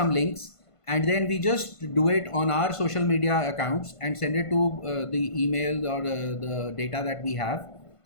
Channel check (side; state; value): right; late; 1.5 ms